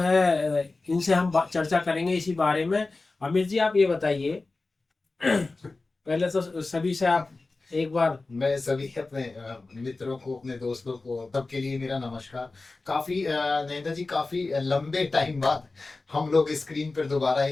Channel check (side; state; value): right; quieter; 3.5 dB